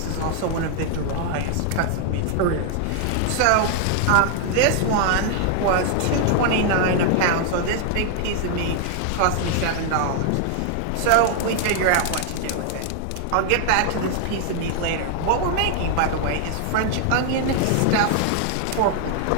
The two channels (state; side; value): different; both; correlation 0.00